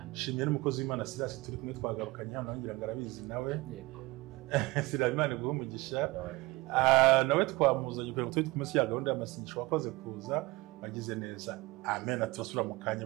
Shimiye n'umukozi w'Imana Silas, turi kumwe twagarukanye hano, ngira ngo arabizi nawe. Silas, Imana iguhe umugisha. Nawe twamuzanye kugira ngo tujye kumenya ya gahunda y'amasengesho. Wakoze kuza, bagize neza. Amen. Turasura mu kanya,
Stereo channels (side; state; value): left; quieter; 21.8 dB